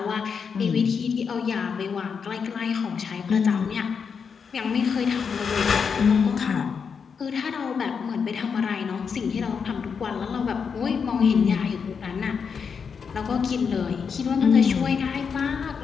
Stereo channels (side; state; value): right; quieter; 6.2 dB